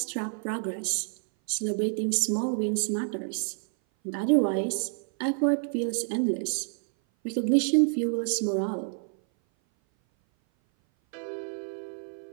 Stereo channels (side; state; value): left; silent; 57 dB below the other